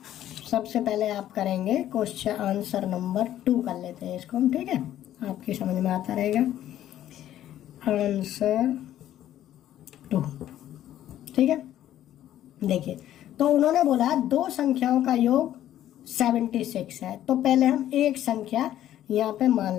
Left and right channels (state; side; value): quieter; right; 12.2 dB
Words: सबसे पहले आप करेंगे क्वेश्चन आंसर नंबर 2 कर लेते हैं इसको हम, ठीक है, आपकी समझ में आता रहेगा। आंसर 2, ठीक है। देखिए, तो उन्होंने बोला दो संख्याओं का योग 76 है, तो पहले हम एक संख्या यहाँ पे